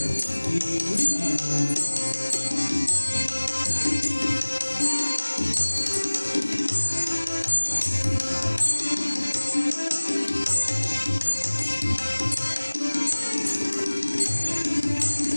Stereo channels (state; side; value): inverted; both; correlation -1.00